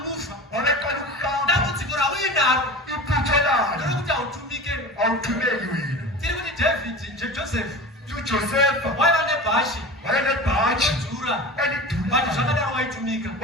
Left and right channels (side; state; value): both; normal; correlation 0.33